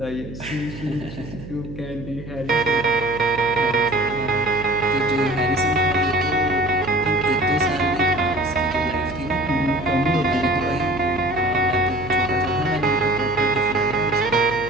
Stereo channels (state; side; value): noise; right; hum, 12 dB below the sound